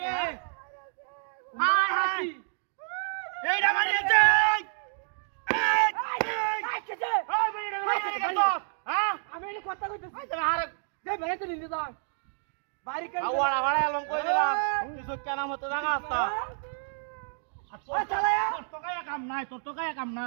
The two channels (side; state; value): left; silent; digital silence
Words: কথা কইতেছি বাড়ি কেন আওয়াড়া ভাড়া এলাম কই দিলাম কিছু কেন মতো জায়গা আসতা তোর তো গায়ে কাম